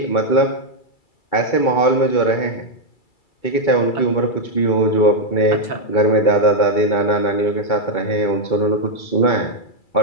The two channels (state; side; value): late; right; 2.3 ms